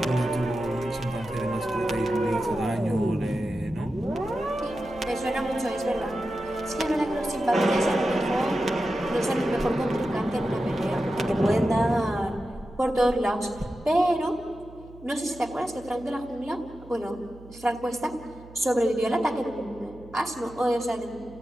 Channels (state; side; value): noise; right; hum, 20 dB below the sound